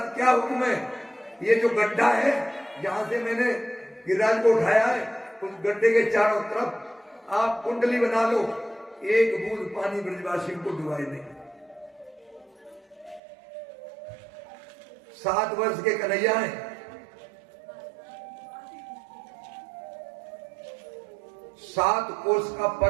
क्या हुक्म है? ये जो गड्ढा है जहां से मैंने गिरिराज को उठाया है, उस गड्ढे के चारों तरफ आप कुंडली बना लो, एक बूंद पानी ब्रजवासियों को डुबाए नहीं। 7 वर्ष के कन्हैया हैं, 7 कोस का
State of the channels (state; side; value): drops out; left; at 13.2 s